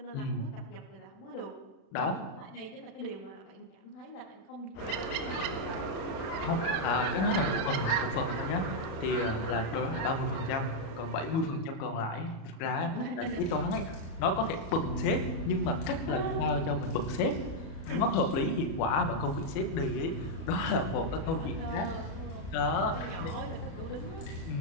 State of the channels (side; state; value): right; late; 37 ms